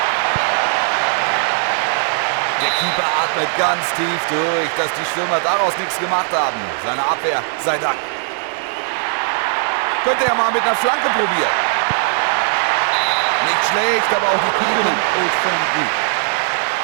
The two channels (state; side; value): silent; left; 63 dB below the other